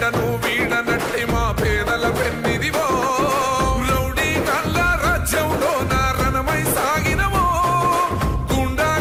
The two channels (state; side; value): identical; both; correlation 1.00